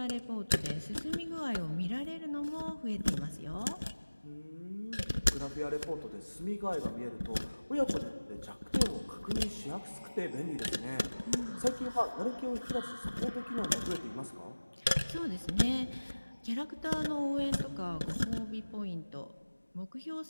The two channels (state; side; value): inverted; both; correlation -1.00